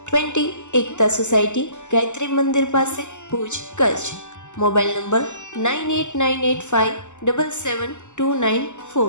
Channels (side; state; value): right; late; 0.84 ms